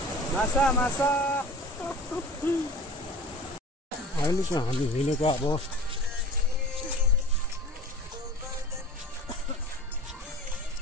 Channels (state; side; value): normal; both; correlation 0.40